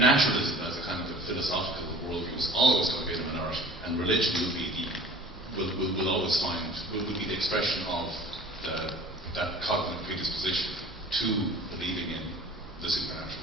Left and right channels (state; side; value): normal; both; correlation 0.45